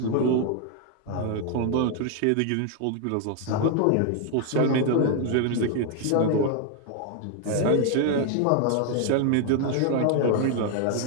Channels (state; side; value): different; both; correlation 0.00